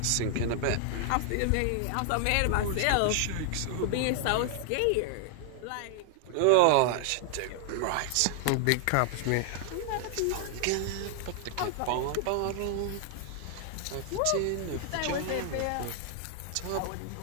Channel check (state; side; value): different; both; correlation 0.00